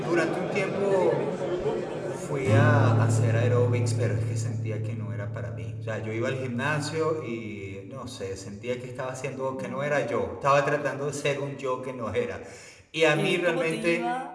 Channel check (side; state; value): both; identical; correlation 1.00